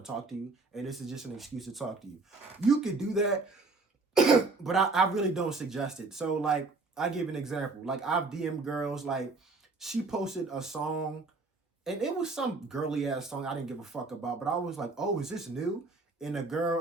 talk to you, and this is just an excuse to talk to you. You could do that, but I really don't suggest it. So like, I give an example. Like I've DM'd girls, like she posted a song and it was some girly ass song I didn't give a fuck about, but I was like, oh, is this new? And the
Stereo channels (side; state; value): left; quieter; 3.6 dB